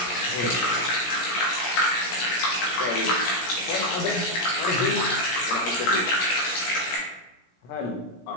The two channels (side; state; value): right; late; 16 ms